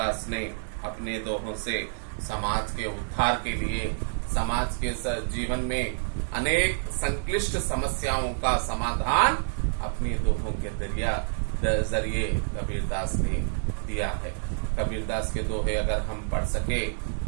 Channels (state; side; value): silent; left; digital silence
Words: ने अपने दोहों से समाज के उद्धार के लिए, समाज के जीवन में अनेक संक्लिष्ट समस्याओं का समाधान अपने दोहों के जरिए कबीरदास ने दिया है। कबीरदास के दोहे अगर हम पढ़ सके,